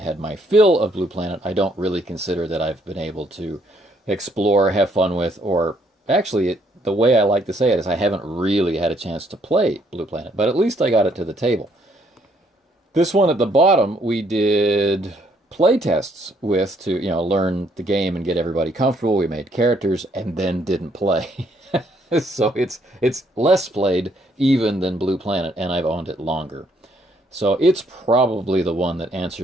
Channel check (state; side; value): normal; both; correlation 0.69